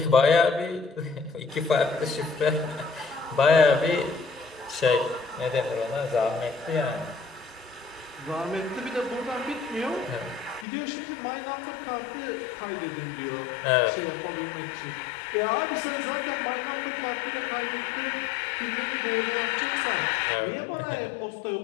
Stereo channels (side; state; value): right; drops out; at 10.7 s